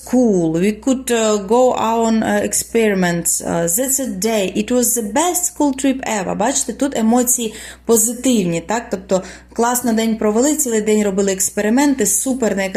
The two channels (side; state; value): both; identical; correlation 1.00